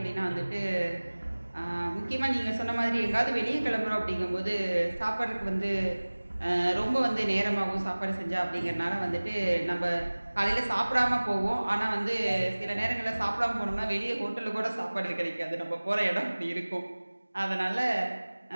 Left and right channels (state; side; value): inverted; both; correlation -1.00